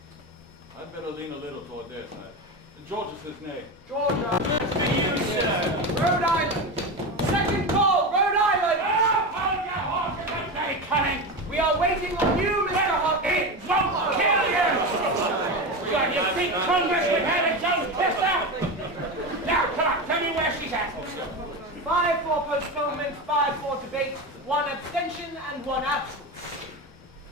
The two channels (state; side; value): normal; both; correlation 0.20